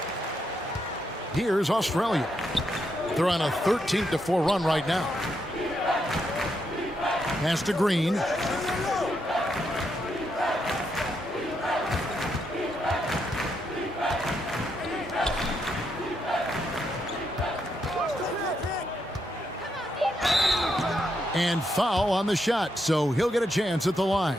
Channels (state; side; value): normal; both; correlation 0.80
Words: Here's Australia. They're on a 13-4 run right now. Pass to Green. And foul on the shot, so he'll get a chance at the line.